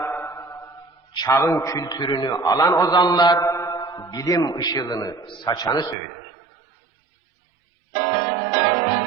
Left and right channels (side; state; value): left; drops out; at 6.0 s